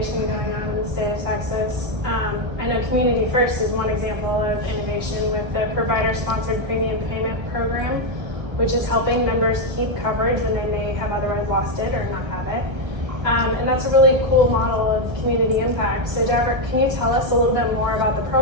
going on in the state of Texas. I know Community First is one example of innovation with the provider-sponsored premium payment program, which is helping members keep coverage when they may have otherwise lost it or not have it. And that's a really cool model of community impact. So Jack, can you tell us a little bit more about the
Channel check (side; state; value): left; late; 1.3 ms